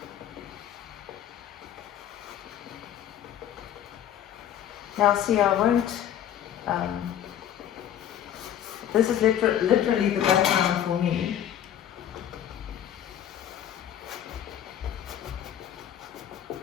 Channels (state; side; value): quieter; right; 10.5 dB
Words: now see, I won't, this is literally the background for me.